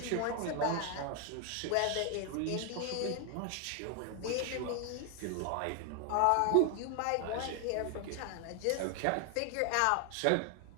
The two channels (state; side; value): different; both; correlation 0.00